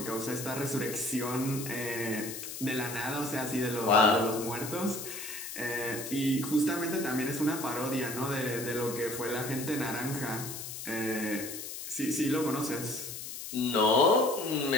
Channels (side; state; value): left; noise; hiss, 8 dB below the sound